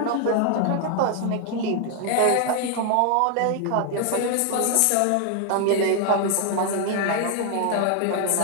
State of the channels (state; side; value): different; both; correlation 0.00